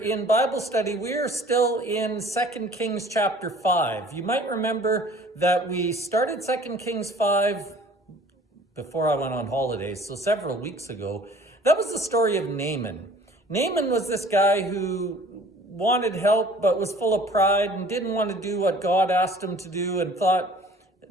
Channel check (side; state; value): both; normal; correlation 0.50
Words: in Bible study. We're still in 2 Kings chapter 5. You might remember that we started 2 Kings 5 before I went on holidays, so several weeks ago. That was the story of Naaman. Naaman was this guy who wanted help but was full of pride and didn't want to do what God asked him to do and thought